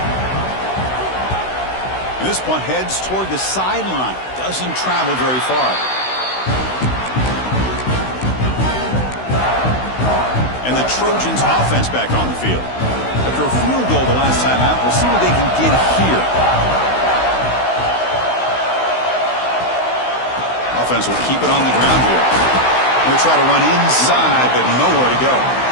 And this punt heads toward the sideline. Doesn't travel very far. And the Trojans offense back on the field. After a field goal the last time out, we'll see what they can get here. Offense will keep it on the ground here. Going to try to run inside, but nowhere to go.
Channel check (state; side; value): late; right; 16 ms